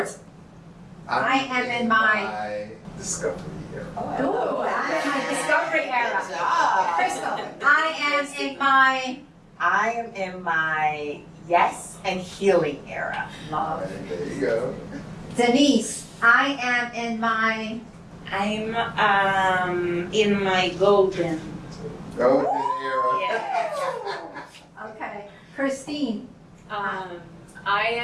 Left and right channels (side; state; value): both; identical; correlation 1.00